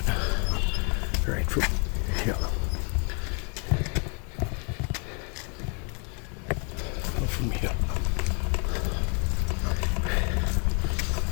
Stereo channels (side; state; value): right; quieter; 37.7 dB